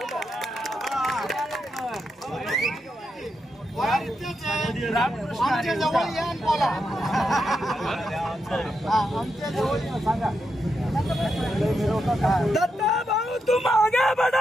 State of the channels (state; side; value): normal; both; correlation 0.84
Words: आमच्या जवळ या आणि बोला. आमच्या जवळ सांगा. दत्ता भाऊ तुम आगे